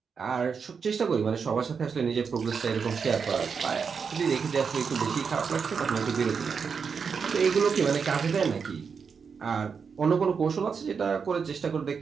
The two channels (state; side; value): quieter; left; 5.9 dB